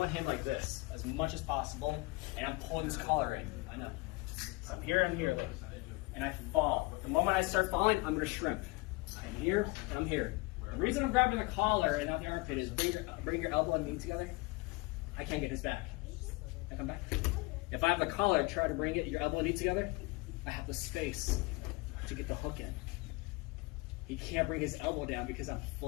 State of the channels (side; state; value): right; quieter; 23.9 dB